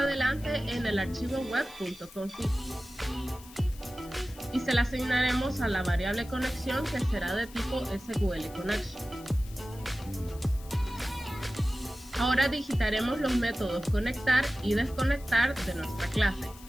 en el archivo web.config. Y se la asignaremos a la variable conexión, que será de tipo SQL Connection. Ahora digitaremos los métodos conectar y desconectar de nuestra clase.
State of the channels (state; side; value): noise; left; hiss, 20 dB below the sound